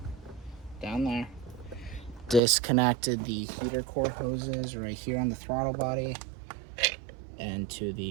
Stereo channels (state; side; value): drops out; left; at 2.4 s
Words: down there. Disconnected the heater core hoses right here on the throttle body and to